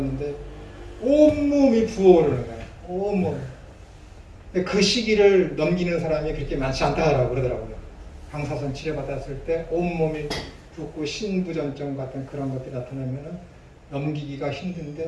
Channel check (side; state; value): both; identical; correlation 1.00